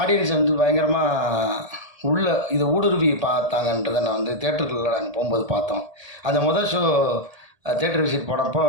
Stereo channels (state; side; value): late; left; 1.7 ms